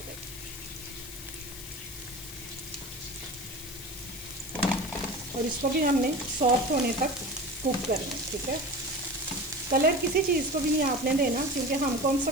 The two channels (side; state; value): left; noise; hiss, 12 dB below the sound